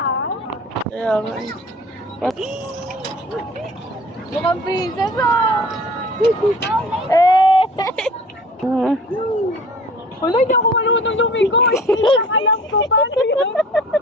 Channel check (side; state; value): both; normal; correlation 0.46